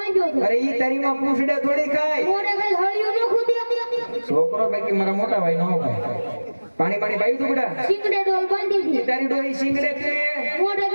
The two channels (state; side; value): inverted; both; correlation -1.00